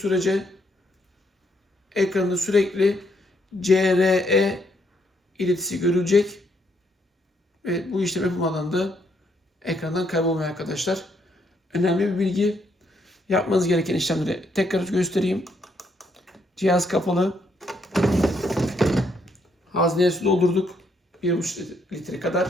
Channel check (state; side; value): normal; both; correlation 0.74